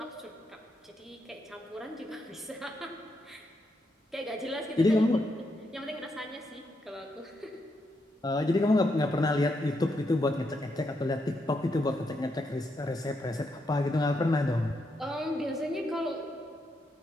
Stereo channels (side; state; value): both; normal; correlation 0.80